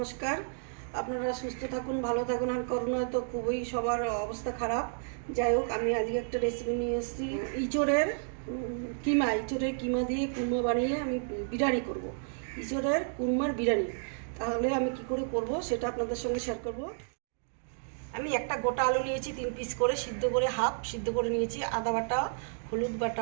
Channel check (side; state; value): left; silent; digital silence